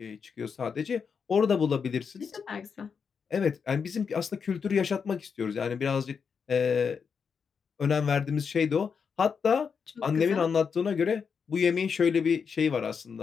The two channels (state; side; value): quieter; right; 6.2 dB